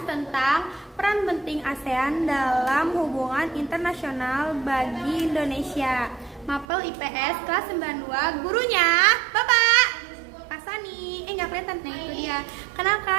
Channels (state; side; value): drops out; left; at 6.7 s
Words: tentang peran penting ASEAN dalam hubungan internasional bagi Indonesia. Mapel IPS kelas 92, gurunya Bapak Pak Sani. Nggak kelihatan, nah itu dia.